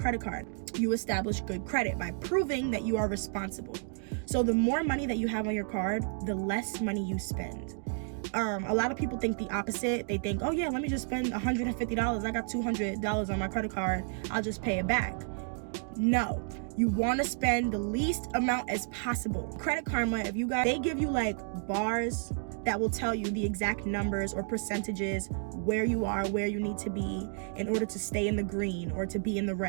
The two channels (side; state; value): left; silent; 57 dB below the other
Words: card. You establish good credit by proving that you are responsible. So the more money that you have on your card, the less money you spend. A lot of people think the opposite. They think, oh yeah, let me just spend $150. I got $200 on my credit card. I'll just pay it back. No, you want to spend the least amount as possible. Credit Karma, they give you like bars that will tell you the exact numbers or percentages where you are, where you need to be in order to stay in the green or to be in the